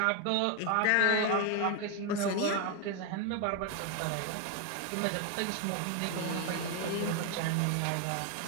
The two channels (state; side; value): different; both; correlation 0.01